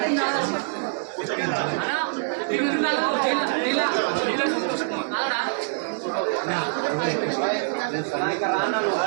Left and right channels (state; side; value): silent; left; digital silence